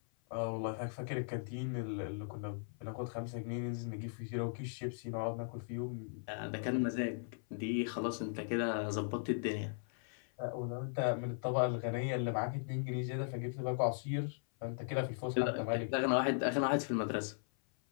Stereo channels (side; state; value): right; silent; 52 dB below the other